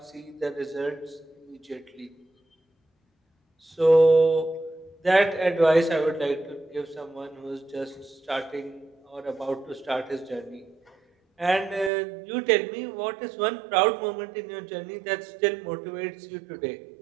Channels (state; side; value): drops out; left; at 11.9 s